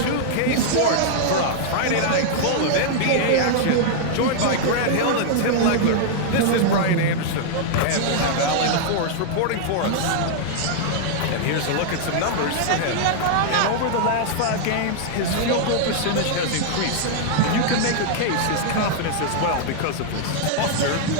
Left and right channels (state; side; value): different; both; correlation -0.01